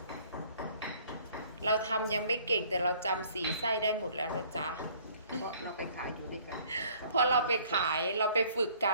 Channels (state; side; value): inverted; both; correlation -0.57